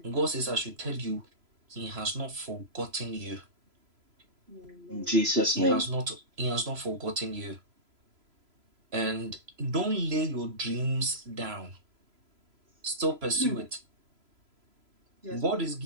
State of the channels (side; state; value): left; late; 3.0 ms